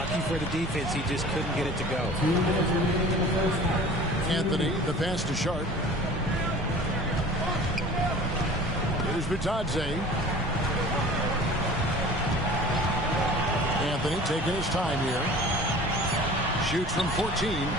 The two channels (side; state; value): both; normal; correlation 0.43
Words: for the defense, he just couldn't get it to go. Anthony, the pass to Sharp. Here's Bitadze. Anthony taking his time here. Shoots from 14.